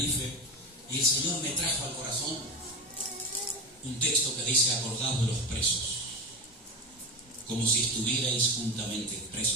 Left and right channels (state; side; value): normal; both; correlation 0.23